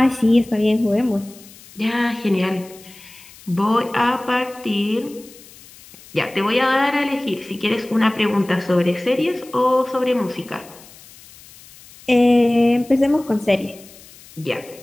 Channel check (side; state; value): left; noise; hiss, 22 dB below the sound